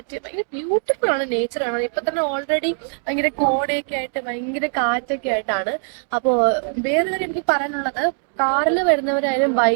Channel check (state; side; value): silent; left; 65 dB below the other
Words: ഭയങ്കര ബ്യൂട്ടിഫുൾ ആണ്. നേച്ചറാണ്. ഇപ്പൊ തന്നെ ഓൾറെഡി ഭയങ്കര കോടയൊക്കെ ആയിട്ട് ഭയങ്കര കാറ്റൊക്കെ ആയിട്ടാണ്. അപ്പോ വേറെ കാര്യം എനിക്ക് പറയാനുള്ളത്, കാറിൽ വരുന്നവരായാലും